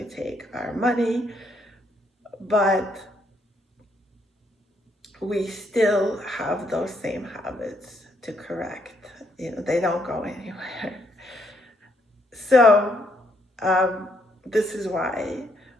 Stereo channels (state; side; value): normal; both; correlation 0.72